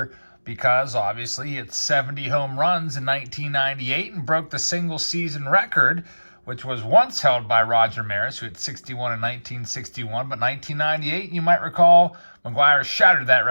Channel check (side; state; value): both; inverted; correlation -1.00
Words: because obviously he hit 70 home runs in 1998 and broke the single season record, which was once held by Roger Maris, who hit 61 in 1961. But 1998, you might recall, McGwire shattered that